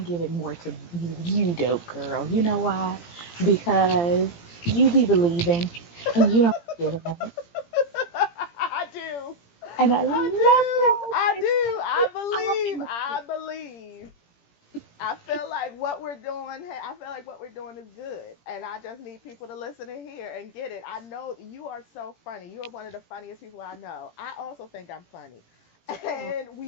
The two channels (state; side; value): late; right; 17 ms